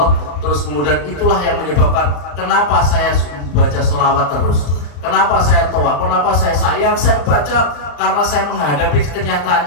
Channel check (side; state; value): right; late; 34 ms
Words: terus kemudian itulah yang menyebabkan kenapa saya baca sholawat terus, kenapa saya toa, kenapa saya sayang, saya baca karena saya menghadapi